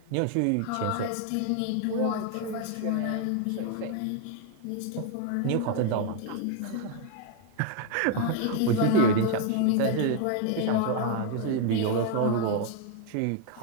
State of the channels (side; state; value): both; different; correlation 0.00